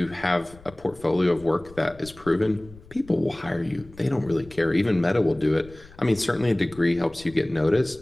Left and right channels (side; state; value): left; noise; rumble, 21 dB below the sound